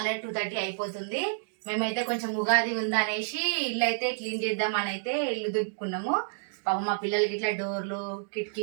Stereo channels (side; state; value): left; silent; digital silence